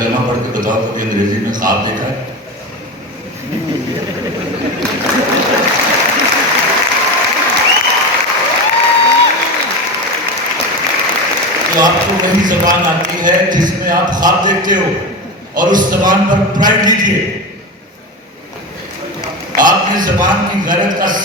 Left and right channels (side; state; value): both; normal; correlation 0.23